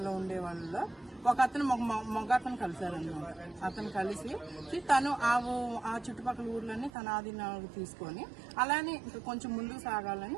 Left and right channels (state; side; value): drops out; left; at 6.9 s